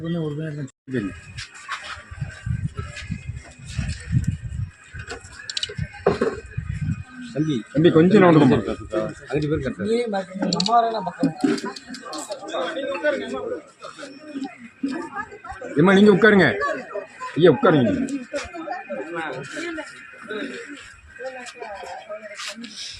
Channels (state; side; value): identical; both; correlation 1.00